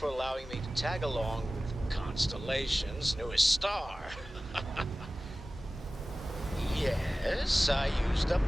allowing me to tag along with Constellation's newest star. Yes, I used a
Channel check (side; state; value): both; normal; correlation 0.97